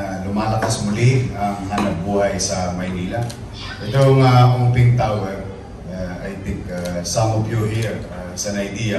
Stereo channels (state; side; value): identical; both; correlation 1.00